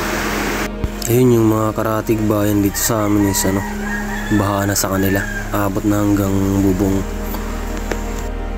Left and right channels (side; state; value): both; identical; correlation 1.00